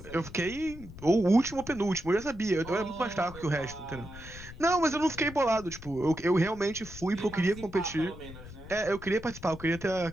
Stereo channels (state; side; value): noise; left; rumble, 15 dB below the sound